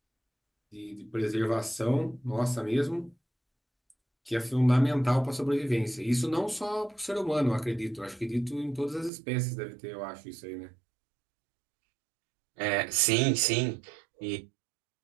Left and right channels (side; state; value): left; drops out; at 9.1 s